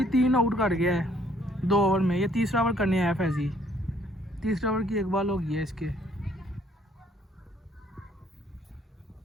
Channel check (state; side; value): normal; both; correlation 0.64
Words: 3 आउट कर गया है 2 ओवर में। ये तीसरा ओवर करने आया फैजी। तीसरा ओवर की एक बॉल हो गई है इसके।